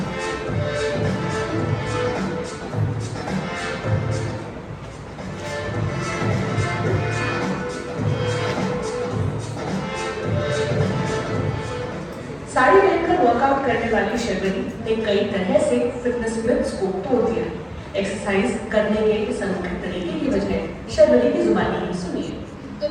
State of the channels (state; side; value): identical; both; correlation 1.00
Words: साड़ी पहनकर वर्कआउट करने वाली शर्वरी ने कई तरह से फिटनेस मिथ्स को तोड़ दिया। एक्सरसाइज करने के इस अनोखे तरीके की वजह शर्वरी की जुबानी ही सुनिए। तो